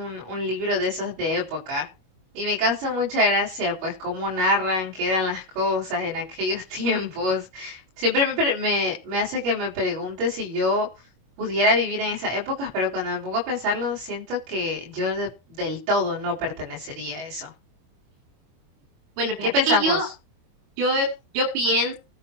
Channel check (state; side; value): late; left; 25 ms